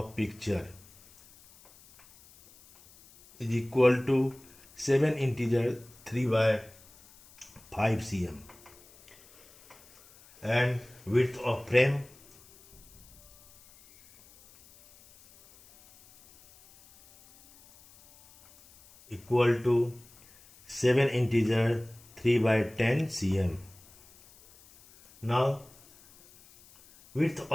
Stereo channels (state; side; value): noise; left; hiss, 25 dB below the sound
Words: picture is equal to 7 integer 3 by 5 cm, and width of frame equal to 7 integer 3 by 10 cm. Now width